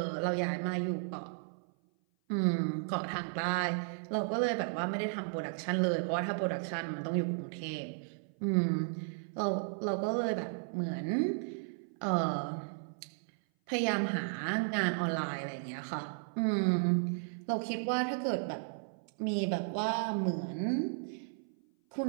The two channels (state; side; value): silent; left; 55 dB below the other